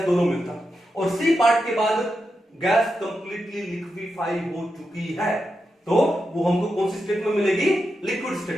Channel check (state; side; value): normal; both; correlation 0.87